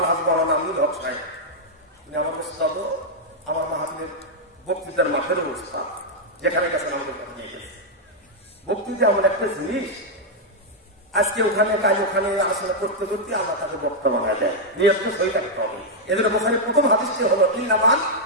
মাওলানা আমিনুল হক সাহেব, তিনি আমার উস্তাদ, আমার মাহফিলের বক্তৃতার মাঠের উস্তাদ, যেখানে গেছেন আমাদের নিয়ে গেছে। বক্তৃতা এমন একটা জিনিস, আজকে ওখানে কাজ ওখানে আলোচনা করতে করতে আল্লাহ তাকে বক্তা বানায় দেয়, নিয়ত সই থাকতে হবে। এদের বোখারি প্রথম হাদিসটি হলো ইন্নামাল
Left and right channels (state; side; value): normal; both; correlation -0.03